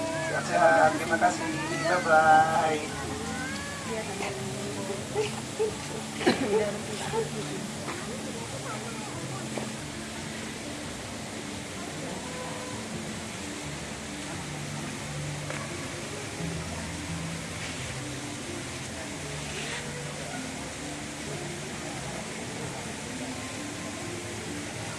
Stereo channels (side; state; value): both; identical; correlation 1.00